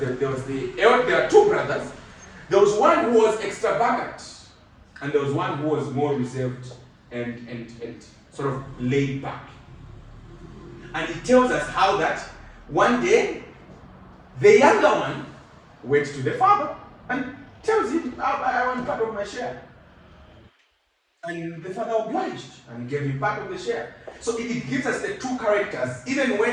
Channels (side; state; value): both; identical; correlation 1.00